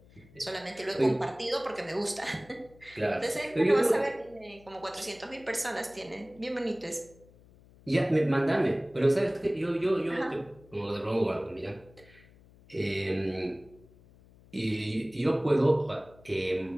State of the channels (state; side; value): noise; left; hum, 25 dB below the sound